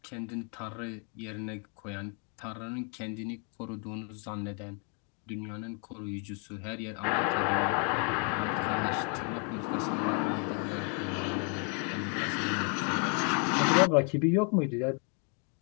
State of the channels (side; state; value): right; quieter; 38.5 dB